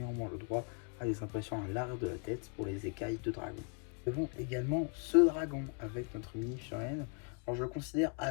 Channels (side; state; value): right; quieter; 39.5 dB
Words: le droit à des impressions à l'arrière de la tête pour les écailles de dragon. Nous avons également ce dragon avec notre mini-figurine. Alors je le considère